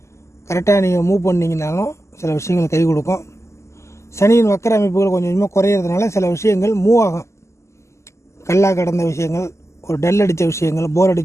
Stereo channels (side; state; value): right; late; 0.13 ms